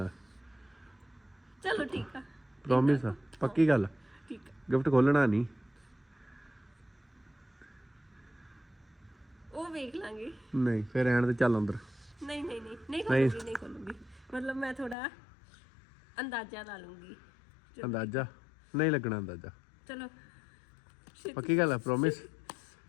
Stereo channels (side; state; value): right; drops out; at 15.0 s